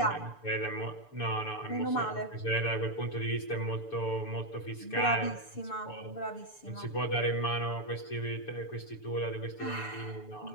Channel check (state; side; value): late; right; 6.9 ms